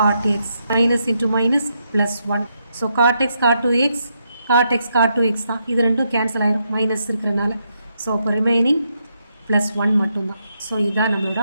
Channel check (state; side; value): inverted; both; correlation -0.80